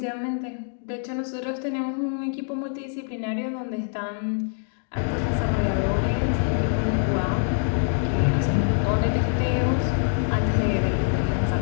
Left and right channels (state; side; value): silent; right; 60 dB below the other